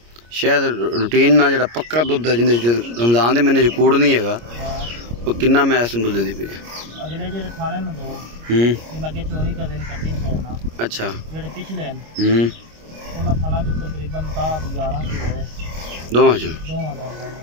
शायद रूटीन ना जो पक्का दुध है जिंदे रमजान के महीने कूड़ नहीं है वो किन्ना मैस दुध दी पे अगले जेडे थाने न दो लगे 24 का दिन कटिंग छोड़ना अच्छा जेडे पिछले उन्हां थाना जो तकरीबन 11 किलो है दोवां चो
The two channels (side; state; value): left; late; 25 ms